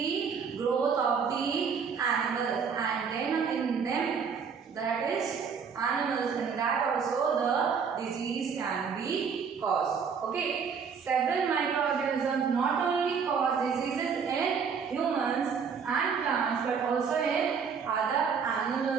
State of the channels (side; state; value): left; quieter; 6.2 dB